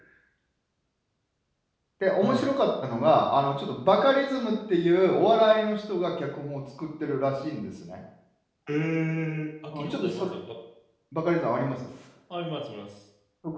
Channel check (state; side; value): identical; both; correlation 1.00